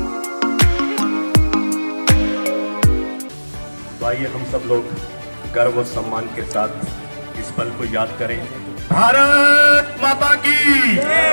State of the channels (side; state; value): both; inverted; correlation -1.00